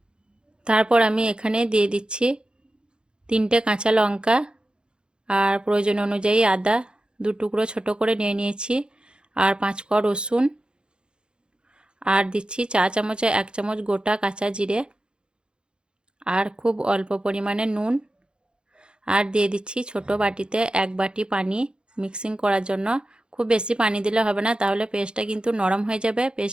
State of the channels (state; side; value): late; left; 0.051 ms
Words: তারপর আমি এখানে দিয়ে দিচ্ছি 3টে কাঁচা লঙ্কা, আর প্রয়োজন অনুযায়ী আদা 2 টুকরো ছোট করে নিয়ে নিয়েছি, আর 5 কোয়া রসুন, আর দিচ্ছি 4 চামচে 1 চামচ গোটা কাঁচা জিরে, আর খুব অল্প পরিমাণে নুন, আর দিয়ে দিচ্ছি ছোট বাটিতে 1 বাটি পানি মিক্সিং করার জন্য। খুব বেশি পানি দিলে হবে না, তাহলে পেস্টটা কিন্তু নরম হয়ে যাবে।